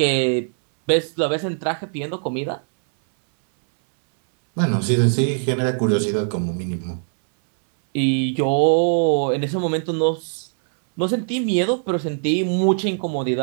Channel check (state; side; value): silent; left; 65 dB below the other